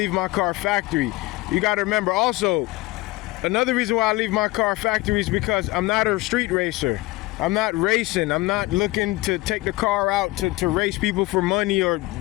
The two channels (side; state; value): right; quieter; 20.3 dB